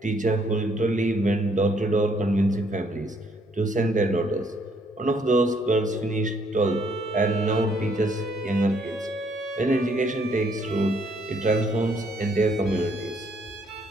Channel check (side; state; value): both; normal; correlation 0.68